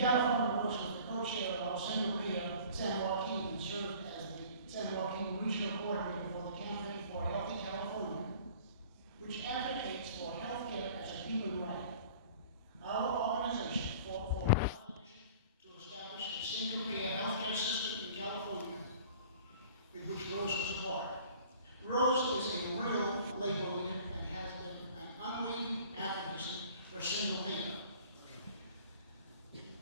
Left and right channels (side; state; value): both; inverted; correlation -0.48